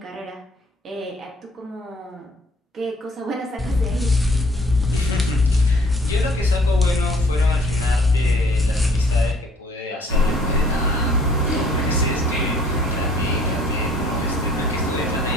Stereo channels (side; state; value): both; normal; correlation 0.57